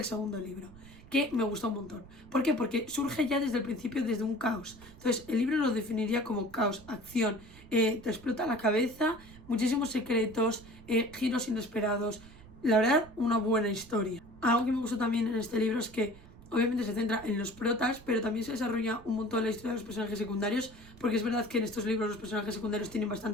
segundo libro, que me gustó un montón. ¿Por qué? Porque surge ya desde el principio, desde un caos. Entonces el libro lo definiría como caos, acción, te explota la cabeza, muchísimos secretos, giros inesperados. La verdad, una buena historia. Algo que me gustó también en este libro es que obviamente se centra en los protas, pero también se desarrolla un montón la historia de los personajes secundarios, porque es verdad que en estos libros los personajes secundarios tienen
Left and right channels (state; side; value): noise; right; rumble, 20 dB below the sound